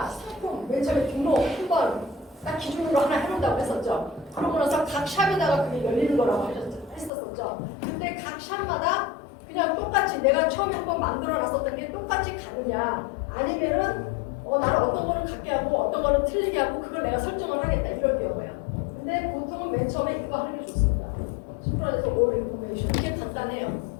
상품 맨 처음에 등록 한번 딱 기준으로 하나 해놓는다고 했었죠. 그러고 나서 각 샵에다가 그게 열리는 거라고 했었죠. 근데 각 샵마다 그냥 똑같이 내가 처음에 한번 만들어 놨었던 게 똑같이 가느냐 아니면은 나는 어떤 거는 같게 하고 어떤 거는 틀리게 하고 그걸 내가 설정을 하겠다 이럴 경우야. 근데 보통은 맨 처음에 이거 하는 게 좋습니다. 심플에서 all information 이게 간단해요.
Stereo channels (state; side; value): drops out; right; at 7.1 s